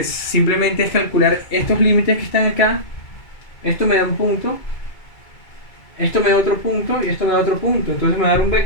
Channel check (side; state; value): right; late; 2.3 ms